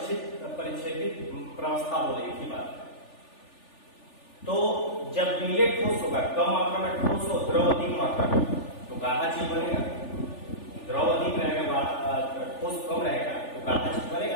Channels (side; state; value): right; late; 3.4 ms